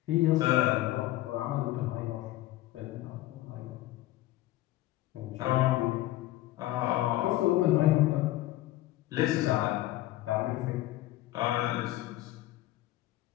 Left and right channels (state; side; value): quieter; right; 16.2 dB